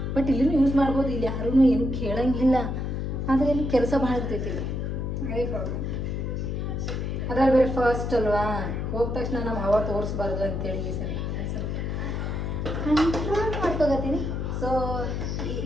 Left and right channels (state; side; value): noise; left; hum, 2 dB below the sound